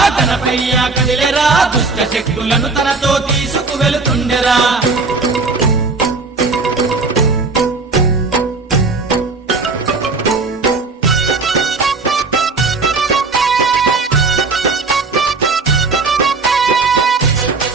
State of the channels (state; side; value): quieter; left; 4.0 dB